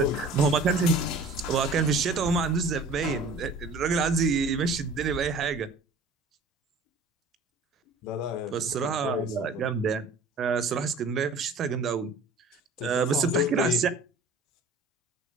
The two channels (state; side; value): quieter; left; 3.1 dB